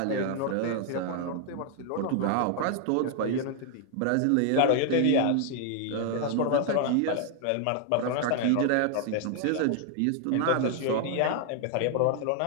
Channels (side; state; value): both; different; correlation 0.00